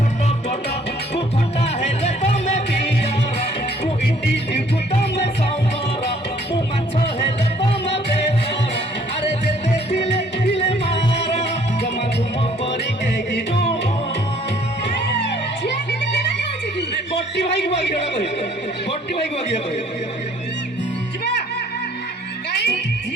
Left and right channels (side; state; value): both; normal; correlation 0.60